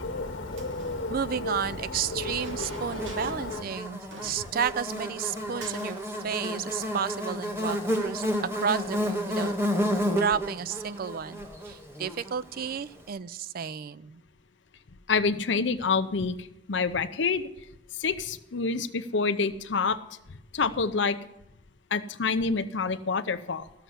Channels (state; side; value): normal; both; correlation 0.14